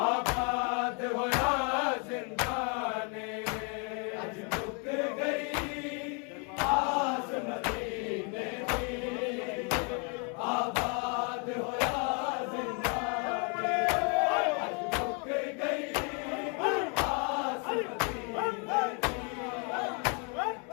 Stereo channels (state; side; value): quieter; right; 35.0 dB